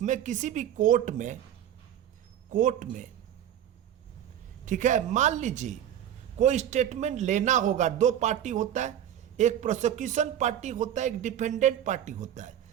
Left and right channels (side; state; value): left; quieter; 10.7 dB